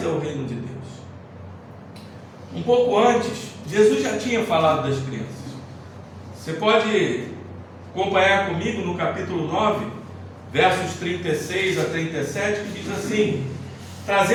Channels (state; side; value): identical; both; correlation 1.00